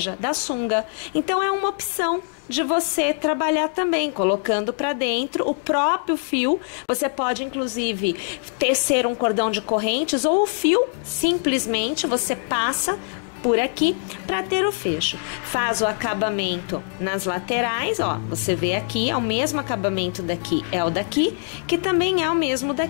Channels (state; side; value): silent; right; 61 dB below the other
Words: da sunga. Então é uma opção de você trabalhar também, colocando para dentro o próprio fio. Você pode inclusive tecer um cordão de correntes ou o fio, simplesmente você passa por aqui para ter o fecho. Faz o acabamento nas laterais, ó, você vê aqui, é o mesmo acabamento daqui, é o daqui, que também é o mesmo